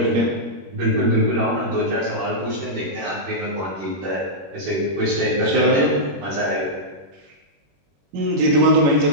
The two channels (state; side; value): late; left; 21 ms